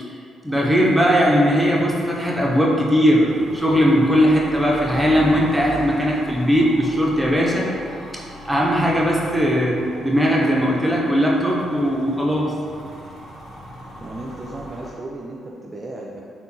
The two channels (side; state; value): both; normal; correlation 0.81